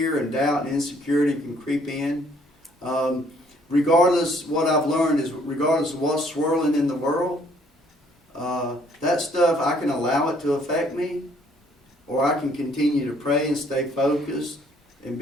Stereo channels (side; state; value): both; normal; correlation 0.64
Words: and doubt and insecurity can creep in. What I've learned is regardless of what's swirling in the world, that stuff, I can allow it to affect me, or I can continue to pray and stay focused and